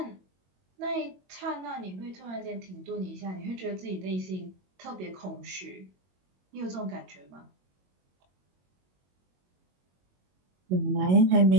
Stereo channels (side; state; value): left; late; 22 ms